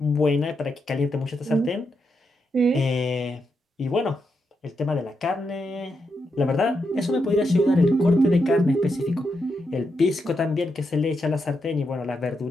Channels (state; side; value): normal; both; correlation 0.83